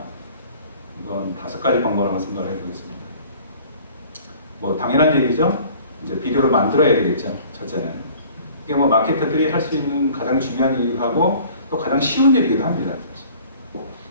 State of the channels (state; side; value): inverted; both; correlation -0.50